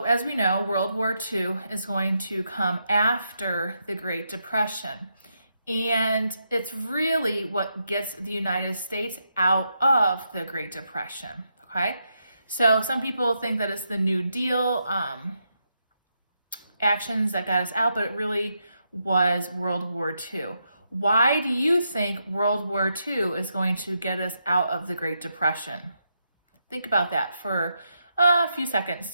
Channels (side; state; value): both; inverted; correlation -0.82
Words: as we know, World War II is going to come after the Great Depression. And it's really what gets the United States out of the Great Depression, okay? So some people think that it's the New Deal actions that got us out, but it really was World War II. Why do you think World War II is going to get us out of the Great Depression? Think about that for a few seconds